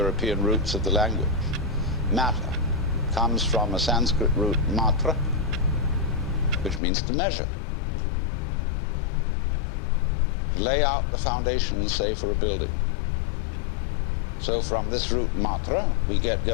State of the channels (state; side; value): drops out; right; at 6.8 s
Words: roots of the language. Matter comes from a Sanskrit root matra, which means to measure. To lay out the foundations, say, for a building. So from this root matra, we get,